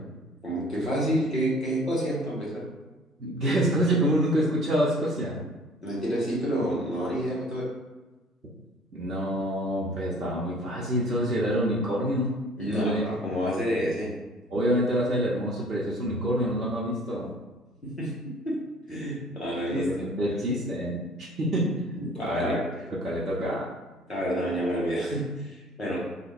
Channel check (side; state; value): both; normal; correlation 0.51